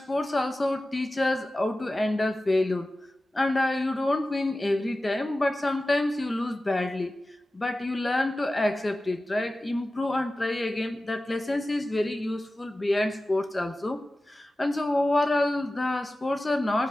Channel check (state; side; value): normal; both; correlation 0.95